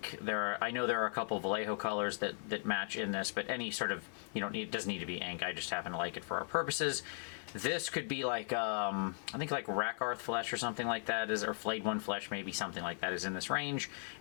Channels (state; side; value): silent; right; 53 dB below the other